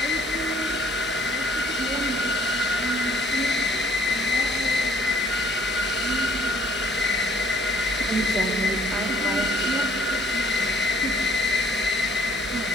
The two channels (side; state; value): both; normal; correlation 0.61